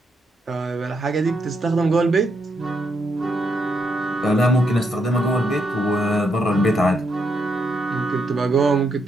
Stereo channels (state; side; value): normal; both; correlation 0.78